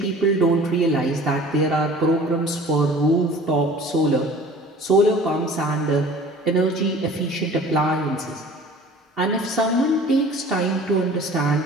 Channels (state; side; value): normal; both; correlation 0.46